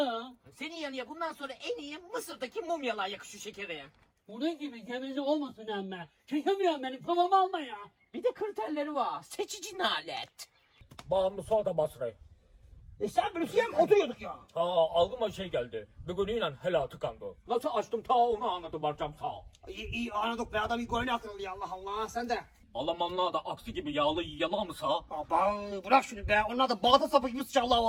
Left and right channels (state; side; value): identical; both; correlation 1.00